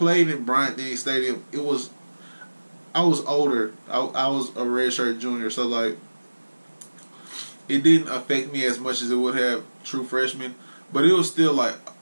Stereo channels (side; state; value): both; inverted; correlation -1.00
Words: in Bryant-Denny Stadium, I was older. I was a redshirt junior, so like, it didn't affect me as much as it would have true freshmen, but it was still like,